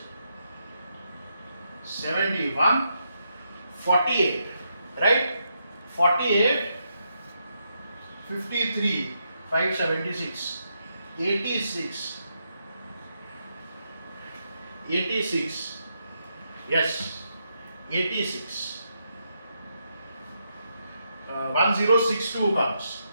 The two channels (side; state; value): both; inverted; correlation -0.81